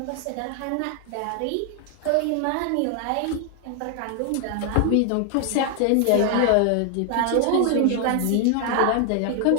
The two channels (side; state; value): both; different; correlation 0.00